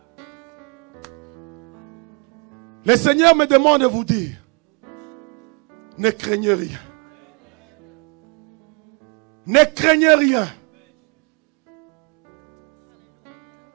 Le Seigneur me demande de vous dire, ne craignez rien. Ne craignez rien.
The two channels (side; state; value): left; quieter; 34.8 dB